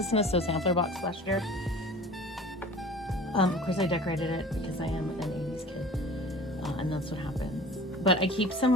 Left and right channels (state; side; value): normal; both; correlation 0.42